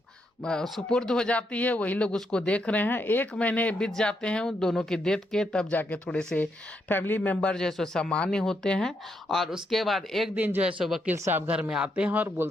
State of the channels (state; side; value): normal; both; correlation 0.79